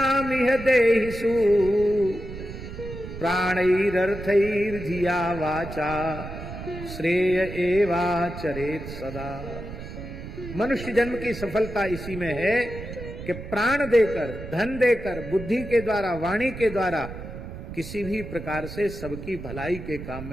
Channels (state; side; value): noise; right; rumble, 10 dB below the sound